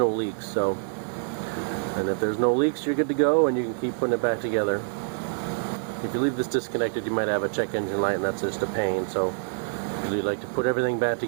leaks. So, and if there's no leaks, you're good to go, and you can keep putting it back together. If you leave this disconnected, you might have a check engine light, and that's just a pain. So usually like to put everything back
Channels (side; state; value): left; silent; digital silence